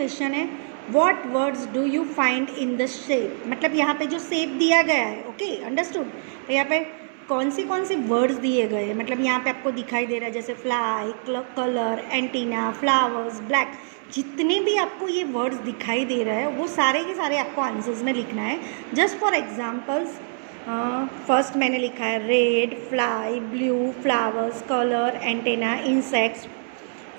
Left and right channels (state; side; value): silent; left; 61 dB below the other